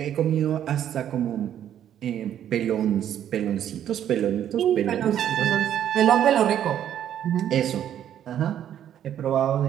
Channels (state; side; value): quieter; left; 10.4 dB